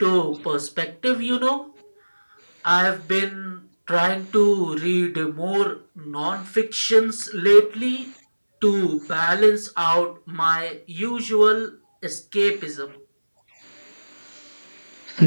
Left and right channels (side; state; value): both; inverted; correlation -1.00